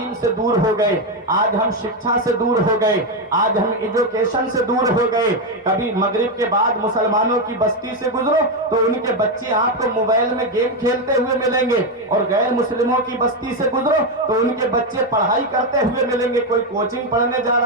سے دور ہو گئے، آج ہم شکشا سے دور ہو گئے، آج ہم ایجوکیشن سے دور ہو گئے۔ کبھی مغرب کے بعد مسلمانوں کی بستی سے گزرو تو ان کے بچے آپ کو موبائل میں گیم کھیلتے ہوئے ملیں گے، اور غیر مسلموں کی بستی سے گزرو تو ان کے بچے پڑھائی کرتے ہوئے ملیں گے، کوئی کوچنگ پڑھنے جا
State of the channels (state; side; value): normal; both; correlation 0.07